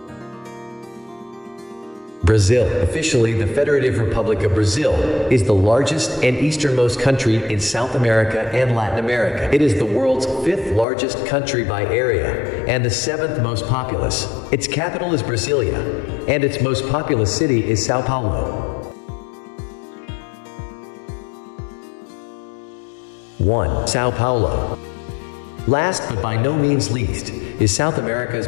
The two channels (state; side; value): drops out; right; at 10.9 s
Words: Brazil, officially the Federative Republic of Brazil, is the largest and easternmost country in South America and Latin America. It is the world's 5th largest country by area and the 7th most populous. Its capital is Brasilia, and its most populous city is Sao Paulo. 1. Sao Paulo. Last but by no means least, is South America's